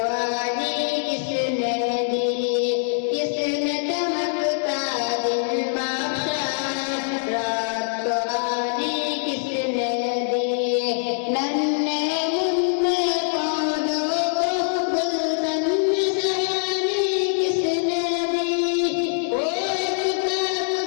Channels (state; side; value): silent; right; digital silence